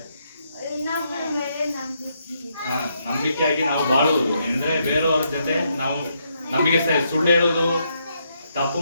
ನಂಬಿಕೆಯಾಗಿ ನಾವು ಬಾಳುವುದು. ಅಂದ್ರೆ ಬೇರೆಯವ್ರ ಜೊತೆ ನಾವು ನಂಬಿಗಸ್ತದೆ. ಸುಳ್ಳು ಹೇಳೋದು, ತಪ್ಪು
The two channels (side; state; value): both; inverted; correlation -0.77